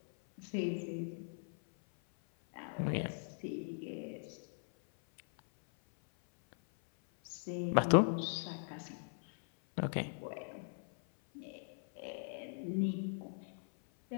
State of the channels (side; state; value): right; silent; 51 dB below the other